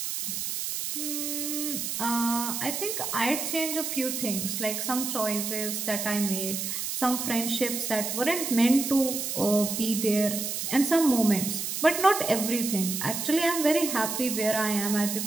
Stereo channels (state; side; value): noise; right; hiss, 3 dB below the sound